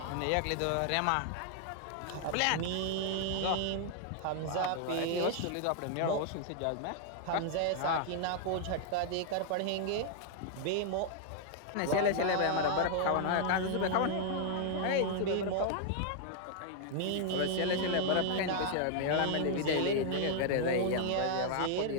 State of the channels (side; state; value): both; different; correlation 0.00